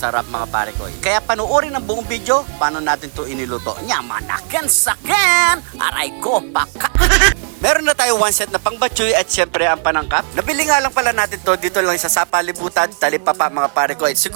mga parekoy. Kaya panuorin ang buong video, paano natin to iniluto. Nyamanaken saken! Aray ko, paka! Meron na tayo one set na pangbatchoy at syempre ang panangkap. Nabili nga lang pala natin to dito lang sa Sapalibutan, Talipapa mga parekoy.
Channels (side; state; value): left; silent; 55 dB below the other